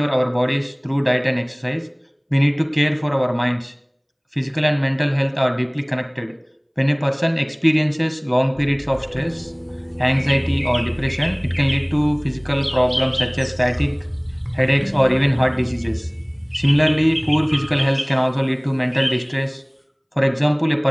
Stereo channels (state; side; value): identical; both; correlation 1.00